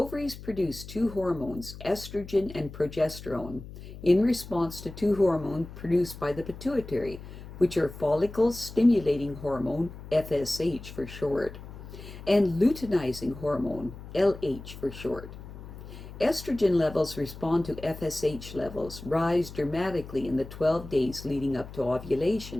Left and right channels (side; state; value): left; noise; hum, 14 dB below the sound